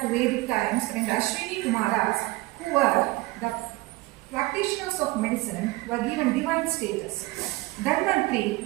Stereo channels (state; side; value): quieter; left; 20.9 dB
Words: to Vedic times when the Ashwini Kumaras, who were the practitioners of medicine, were given divine status.